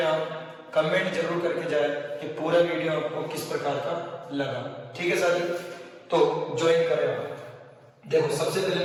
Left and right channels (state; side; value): identical; both; correlation 1.00